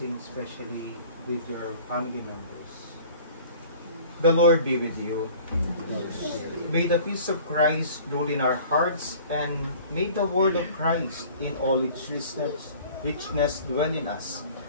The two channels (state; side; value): inverted; both; correlation -0.47